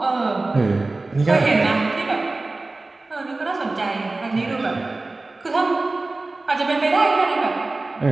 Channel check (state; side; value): quieter; left; 3.2 dB